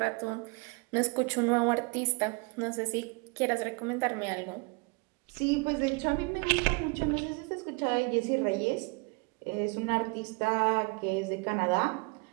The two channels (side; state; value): left; quieter; 30.3 dB